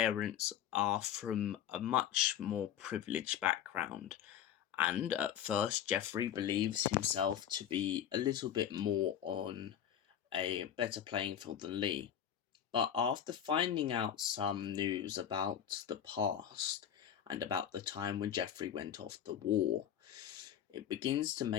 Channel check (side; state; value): right; quieter; 9.7 dB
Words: are from a much more privileged background, and at first Jeffrey believes himself to be a little bit more on a better playing field than Lee. But after finding out some news about the past and about the time when Jeffrey went off to war, it begins to